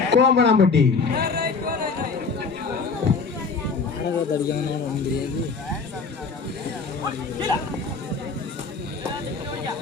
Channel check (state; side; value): quieter; right; 4.7 dB